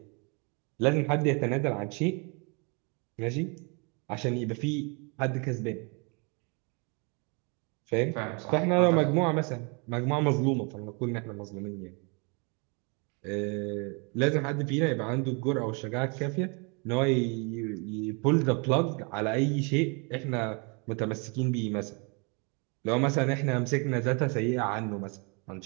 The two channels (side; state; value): left; quieter; 33.2 dB